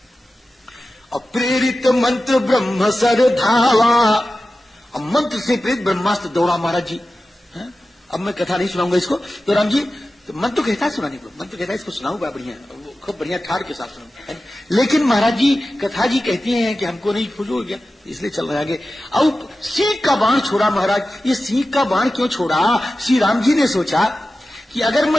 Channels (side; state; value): both; normal; correlation 0.94